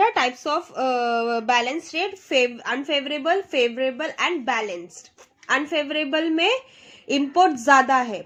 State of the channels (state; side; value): identical; both; correlation 1.00